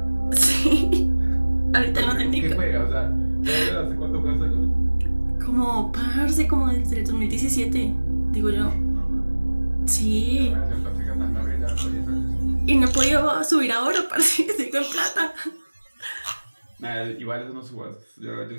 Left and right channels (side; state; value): both; inverted; correlation -1.00